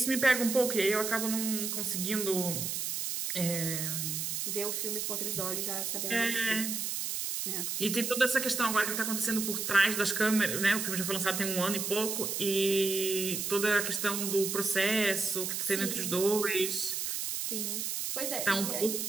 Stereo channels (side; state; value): right; noise; hiss, 2 dB below the sound